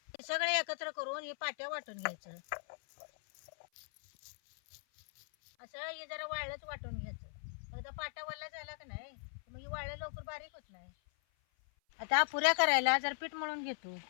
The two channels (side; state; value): right; silent; 52 dB below the other